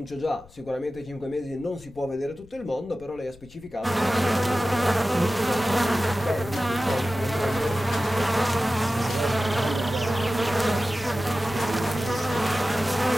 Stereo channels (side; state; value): left; noise; rumble, 23 dB below the sound